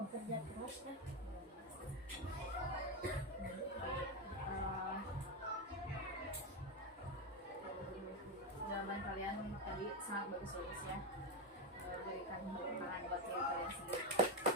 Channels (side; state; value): both; normal; correlation 0.11